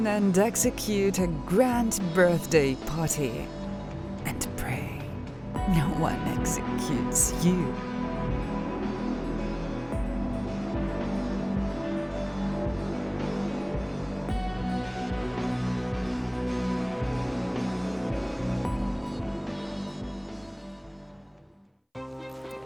and execute a grand birthday party. And pray no one executes you.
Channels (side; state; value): both; identical; correlation 1.00